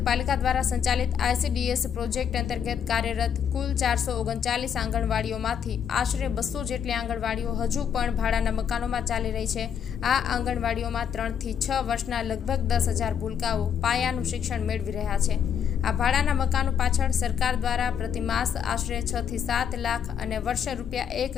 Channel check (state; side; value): quieter; right; 8.2 dB